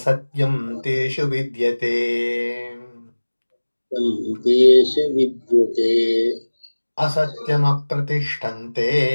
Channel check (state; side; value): inverted; both; correlation -1.00